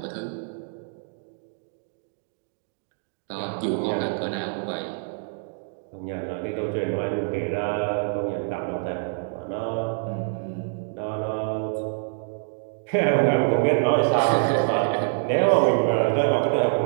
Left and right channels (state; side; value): silent; left; digital silence